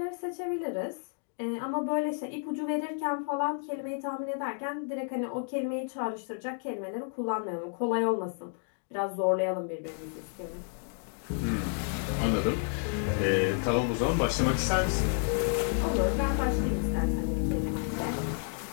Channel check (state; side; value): silent; right; 57 dB below the other